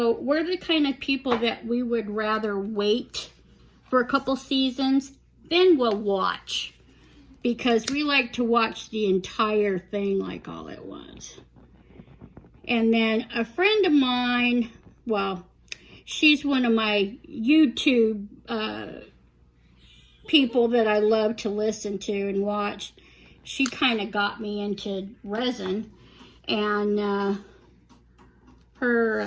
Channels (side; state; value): both; identical; correlation 1.00